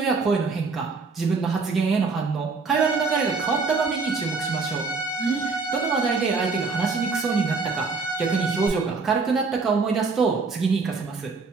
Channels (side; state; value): left; quieter; 4.4 dB